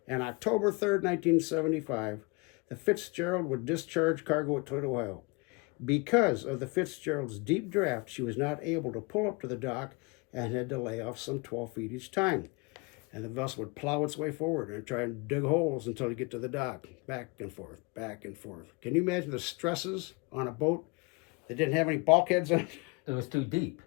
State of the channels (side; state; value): right; quieter; 29.0 dB